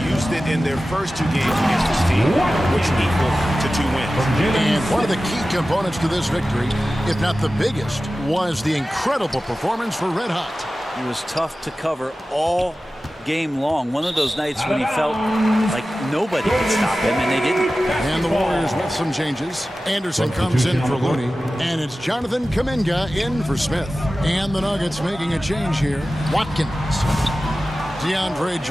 Used it in their first 2 games against this team, which equal to 2 wins. And one of the key components to this victory, if not the biggest, was the incredible performance for Red Hot. He was tough to cover all game long. One of those nights when he felt like nobody could stop him, and they didn't. And the Warriors with some changes. Anderson comes in for Looney, and it's Jonathan Kuminga in for Smith. And the Nuggets making a change here. Watkins. DeAndre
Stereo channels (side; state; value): both; normal; correlation 0.95